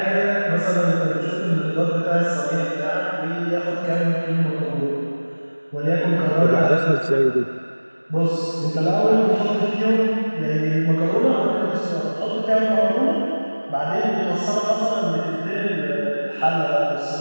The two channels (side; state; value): both; inverted; correlation -1.00